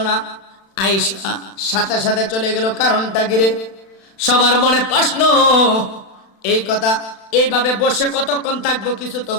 না আয়েশা সাথে সাথে চলে গেল কারণটা কি রে সবার মনে প্রশ্ন এই কথা এইভাবে বসে কতক্ষণ থাকবো কিছু তো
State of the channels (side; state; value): right; late; 36 ms